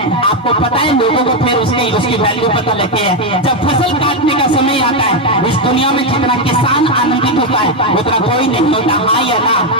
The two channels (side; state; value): both; normal; correlation 0.05